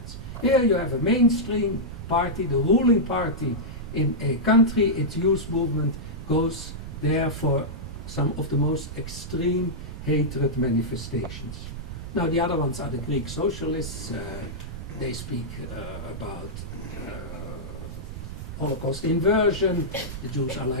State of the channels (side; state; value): right; noise; rumble, 9 dB below the sound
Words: Here you have a mainstream party, the ruling party in a country. Its youth movement goes there for some of the most extreme hatred manifestations. Now the other ones are the Greek socialists. They speak about Holocaust inversion. The Jews are